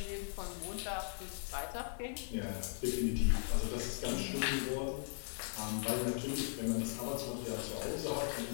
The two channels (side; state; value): right; silent; digital silence